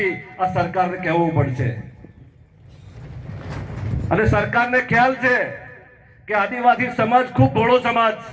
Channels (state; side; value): identical; both; correlation 1.00